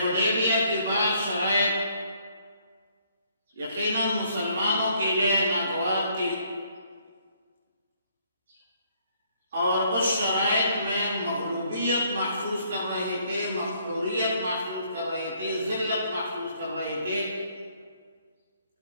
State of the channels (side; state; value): both; inverted; correlation -0.67